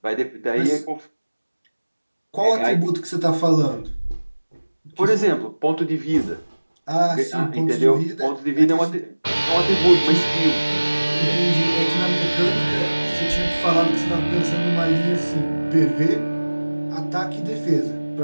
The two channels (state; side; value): inverted; both; correlation -1.00